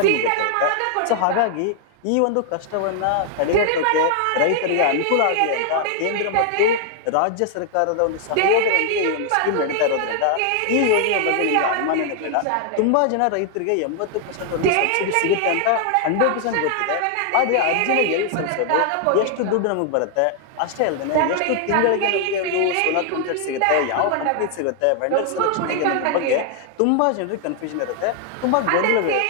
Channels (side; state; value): both; different; correlation 0.00